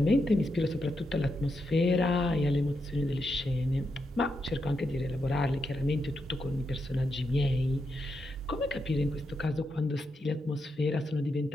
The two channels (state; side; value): normal; both; correlation 0.84